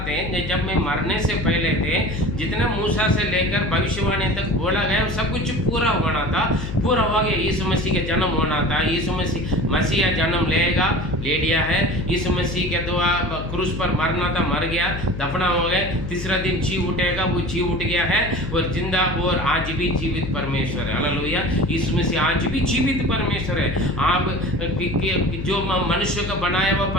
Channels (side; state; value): left; noise; hum, 7 dB below the sound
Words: थे, जब मैं मरने से पहले थे, जितना मूसा से लेकर भविष्यवाणी तक बोला गया वो सब कुछ पूरा होना था, पूरा हो गया। यीशु मसीह के जन्म होना था, यीशु मसीह जन्म लेगा, ले लिया है। यीशु मसीह के द्वारा क्रूस पर मरना था, मर गया, दफना हो गए, तीसरा दिन जी उठेगा, वो जी उठ गया है और जिंदा और आज भी जीवित परमेश्वर है। हालेलुया। यीशु मसीह आज भी जीवित परमेश्वर है। आप जो मनुष्य का बनाया हुआ